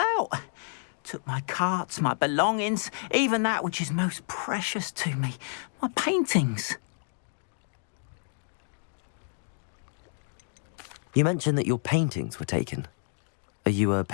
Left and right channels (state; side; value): silent; right; digital silence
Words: Took my carts, my belongings, even that which is most precious to me, my paintings. You mentioned that your paintings were taken. Are you a